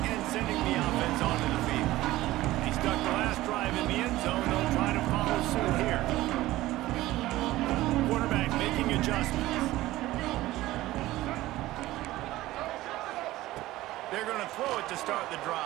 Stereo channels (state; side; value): quieter; left; 16.8 dB